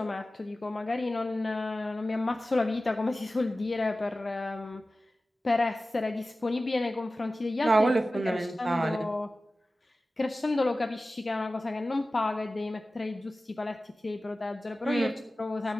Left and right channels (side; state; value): both; normal; correlation 0.96